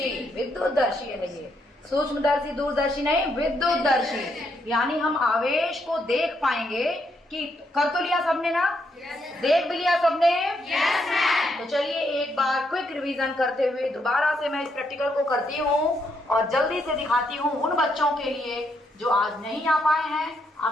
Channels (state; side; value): normal; both; correlation 0.77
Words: विद्युतदर्शी है ये, सूक्ष्मदर्शी दूरदर्शी नहीं, विद्युतदर्शी। यानी हम आवेश को देख पाएंगे कि कर तो लिया सबने ना? देख भी लिया सबने? तो चलिए एक बार क्विक रिवीजन करते हुए दोबारा से मैं इस प्रैक्टिकल को करती हूँ और जल्दी से दिखाती हूँ उन बच्चों के लिए जो आज नहीं आ पाए हैं।